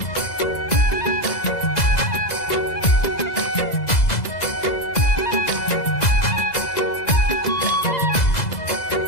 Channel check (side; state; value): right; late; 2.0 ms